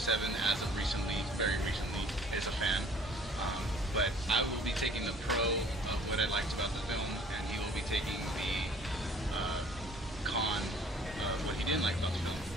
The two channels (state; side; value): normal; both; correlation 0.53